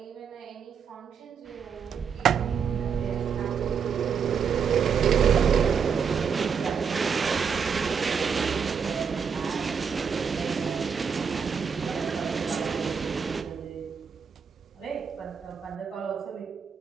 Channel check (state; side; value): quieter; left; 6.6 dB